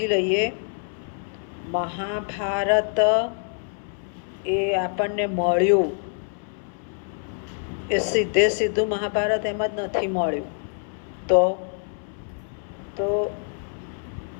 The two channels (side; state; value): right; silent; 61 dB below the other